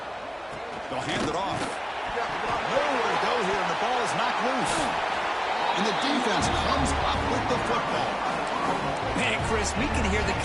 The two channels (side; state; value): both; identical; correlation 1.00